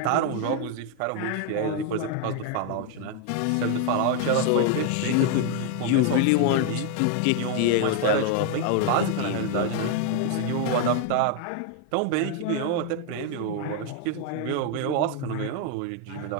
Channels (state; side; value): different; both; correlation 0.00